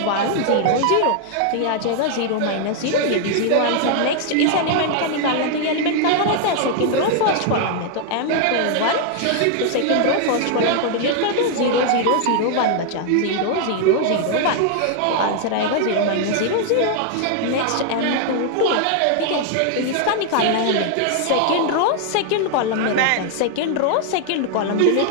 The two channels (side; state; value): both; different; correlation 0.00